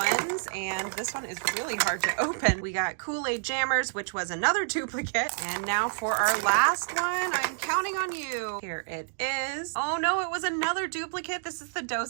and this one is really hard to open. We got Kool-Aid Jammers, which was another duplicate. And now for our last one, I'm counting on you. Here it is. Oh no, it was another duplicate. This is the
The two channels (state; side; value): silent; left; digital silence